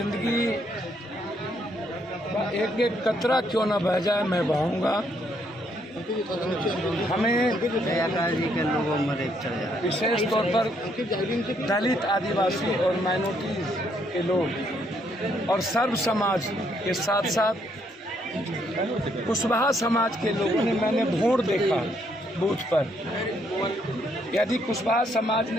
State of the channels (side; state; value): both; normal; correlation 0.72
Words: का एक एक कतरा क्यों न बह जाए, मैं बहाऊंगा। हमें जी के लोगों में विशेष तौर पर दलित, आदिवासी और माइनॉरिटी के लोग और सर्व समाज के साथ साथ कुशवाहा समाज के लोगों ने, मैंने वोट देखा बूथ पर। यदि कुशवाहा समाज